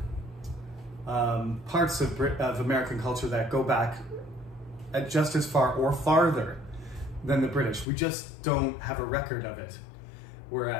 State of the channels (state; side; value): drops out; right; at 7.9 s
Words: parts of American culture that go back just as far or farther than the British. We just don't have a record of it.